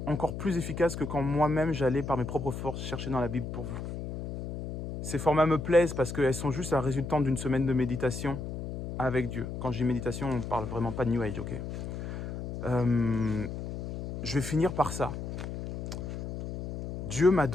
encore plus efficaces que quand moi-même j'allais par mes propres forces chercher dans la Bible pour vous. Ces formats me plaisent parce qu'elles sont juste la résultante d'une semaine de méditation avec Dieu. Quand je dis méditation, on ne parle vraiment pas de New Age, ok? Je vais finir par ça. Dieu m'a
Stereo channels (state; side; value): noise; left; hum, 7 dB below the sound